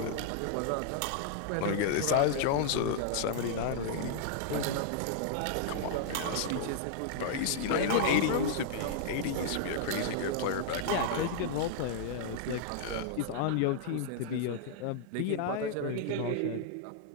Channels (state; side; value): different; both; correlation -0.01